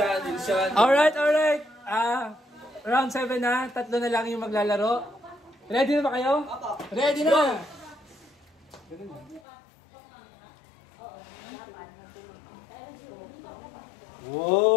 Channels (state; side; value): drops out; right; at 9.4 s